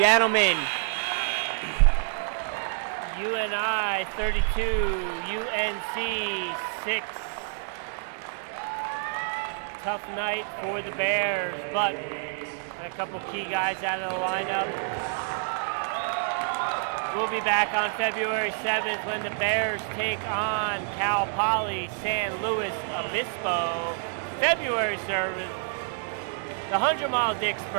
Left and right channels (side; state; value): left; silent; digital silence